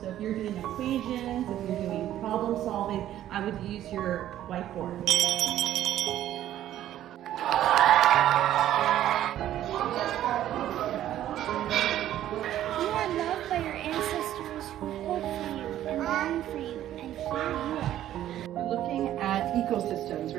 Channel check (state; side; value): quieter; left; 12.4 dB